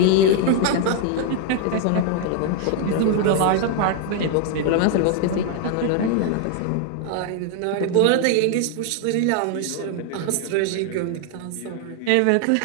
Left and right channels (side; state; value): both; different; correlation 0.00